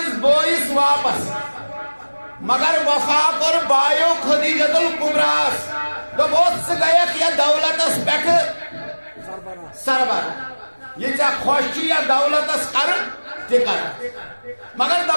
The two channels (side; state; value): both; inverted; correlation -1.00